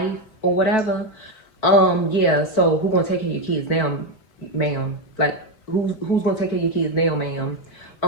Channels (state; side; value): late; right; 4.5 ms